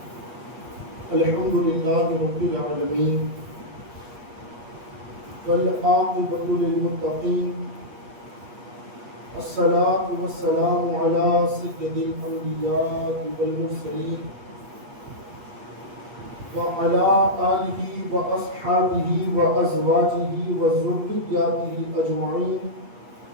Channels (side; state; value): left; late; 8.4 ms